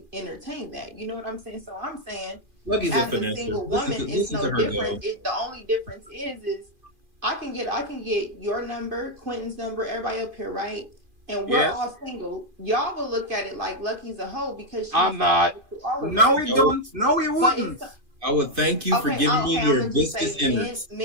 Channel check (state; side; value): late; left; 2.4 ms